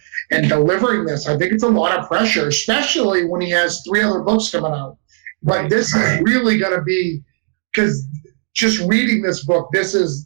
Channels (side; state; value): left; silent; digital silence